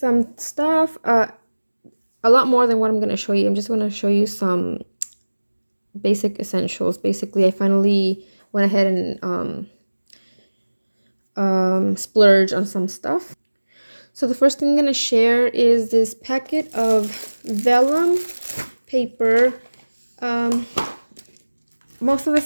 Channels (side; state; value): both; inverted; correlation -1.00